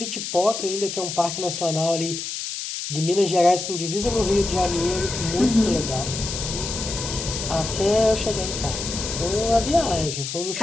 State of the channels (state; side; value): noise; left; hiss, 5 dB below the sound